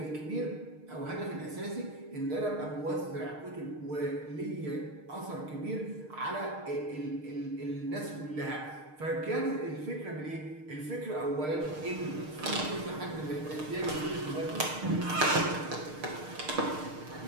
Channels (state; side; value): late; left; 6.5 ms